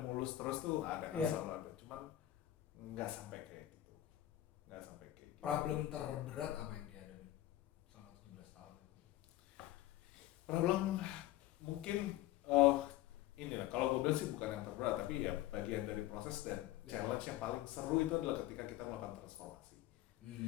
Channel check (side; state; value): right; quieter; 14.5 dB